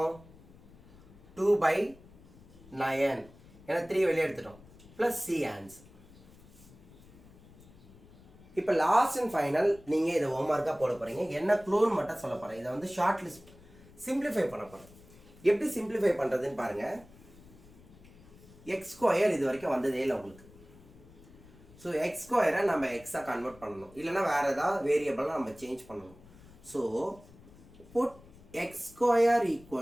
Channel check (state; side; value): noise; left; rumble, 23 dB below the sound